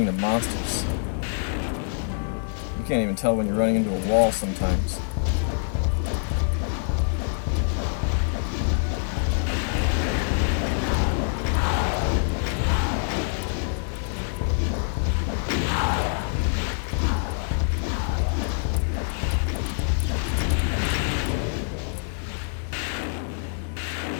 the monsters. You can't even tell when you're running into a wall sometimes.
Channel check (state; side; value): silent; right; digital silence